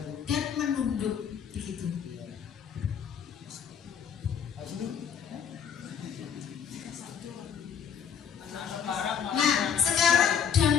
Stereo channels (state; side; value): quieter; right; 7.8 dB